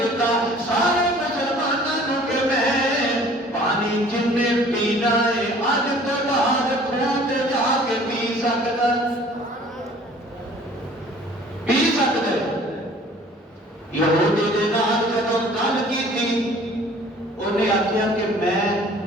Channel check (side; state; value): both; normal; correlation 0.51